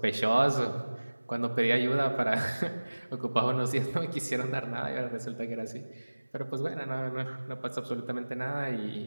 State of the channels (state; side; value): inverted; both; correlation -1.00